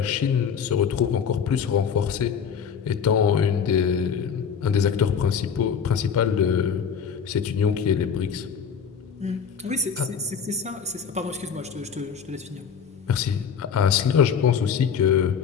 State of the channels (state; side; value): quieter; right; 7.0 dB